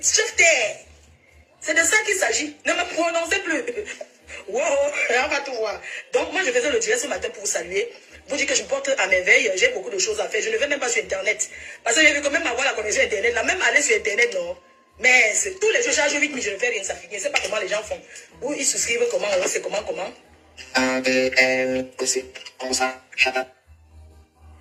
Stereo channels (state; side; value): identical; both; correlation 1.00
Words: C'est de ça qu'il s'agit. Ne me prononcez plus. Wow, on va tout voir. Donc moi je faisais le direct ce matin pour vous saluer. Vous dire que je me porte à merveille. J'ai beaucoup de choses à faire. Je ne vais même pas sur Internet. Parce que j'ai vu quand même avoir la connexion Internet. Là, même aller sur Internet, non. Mais tous les jours, je charge 8 000, je ne fais rien. Ça finit. Je ne sais pas comment les gens font. Ou ils souscrivent comment, ou c'est comment. Quand